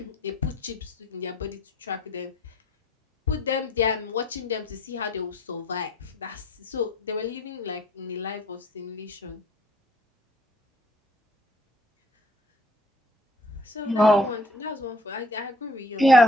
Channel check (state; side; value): normal; both; correlation 0.58